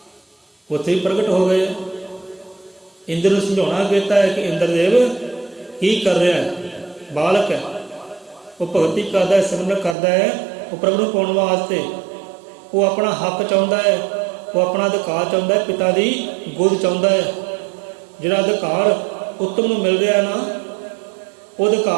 उत्थे ही प्रगट हो गए। इंद्र को समझाना कहता है कि इंद्रदेव की कर रहा है, बालक है, वो भगती करता है, सिमरन करता है, वो प्रभु को पाने वास्ते, वो अपना हक चाहता है, वो अपना अधिकार चाहता है, पिता की गोद चाहता है। जिहड़ा अधिकार उत्तम को मिल रहा है ना, वो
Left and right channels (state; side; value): drops out; left; at 10.0 s